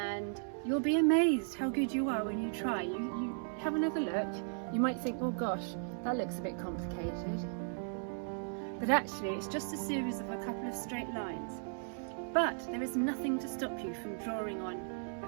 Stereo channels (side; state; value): left; silent; digital silence